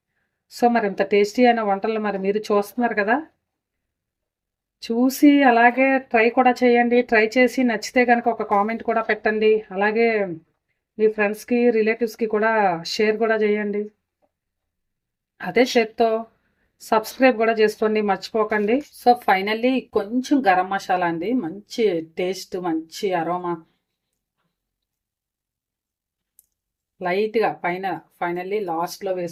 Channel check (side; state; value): both; identical; correlation 1.00